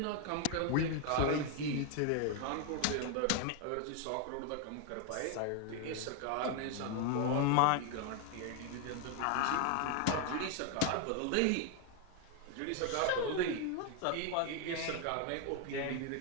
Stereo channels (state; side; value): different; both; correlation 0.01